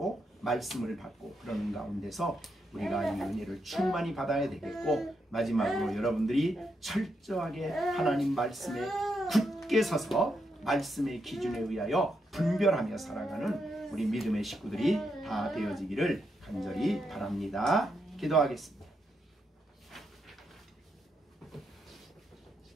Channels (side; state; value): both; normal; correlation 0.81